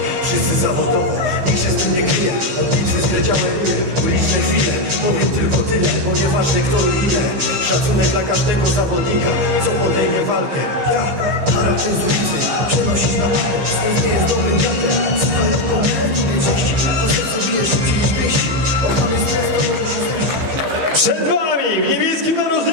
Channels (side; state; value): left; late; 15 ms